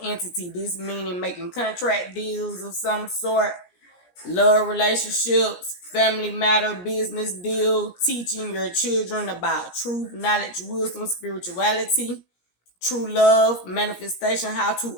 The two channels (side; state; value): right; late; 17 ms